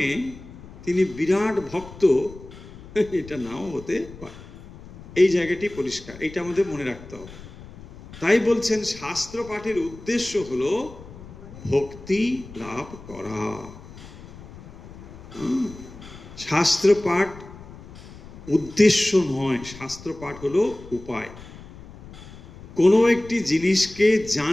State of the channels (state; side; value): noise; left; rumble, 17 dB below the sound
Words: তিনি বিরাট ভক্ত, এটা নাও হতে পারে। এই জায়গাটি পরিষ্কার, এটা আমাদের মনে রাখতে হবে। তাই বলছেন শাস্ত্র পাঠের উদ্দেশ্য হলো ভক্তি লাভ করা। শাস্ত্র পাঠ উদ্দেশ্য নয়, শাস্ত্র পাঠ হলো উপায়। কোনো একটি জিনিসকে